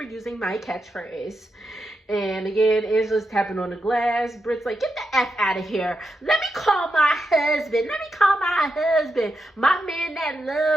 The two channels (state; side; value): normal; both; correlation 0.86